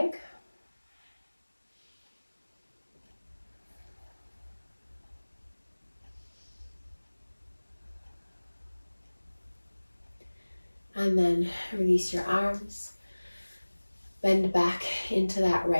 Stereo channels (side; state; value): both; inverted; correlation -1.00